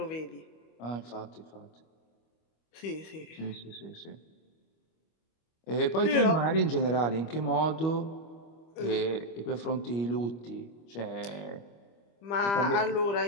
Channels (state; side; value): late; right; 25 ms